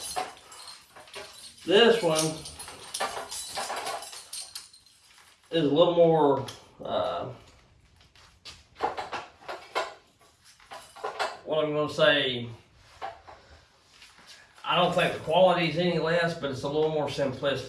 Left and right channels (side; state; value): both; identical; correlation 1.00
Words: This one is a little more, what I'm going to say, I don't think the quality is any less, but it's a little more